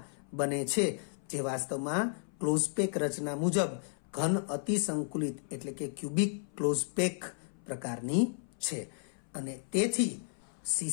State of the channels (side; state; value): right; silent; 55 dB below the other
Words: બને છે, જે વાસ્તવમાં ક્લોઝપેક રચના મુજબ ઘન અતિસંકુલિત એટલે કે ક્યુબિક ક્લોઝપેક પ્રકારની છે અને તેથી